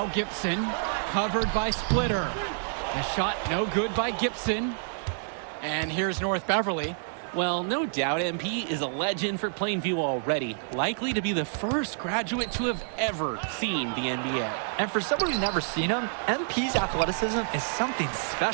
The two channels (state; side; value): silent; left; 59 dB below the other